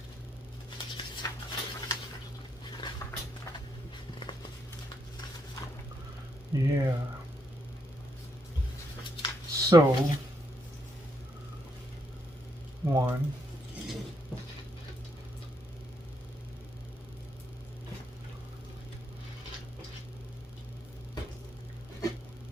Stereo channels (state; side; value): normal; both; correlation 0.76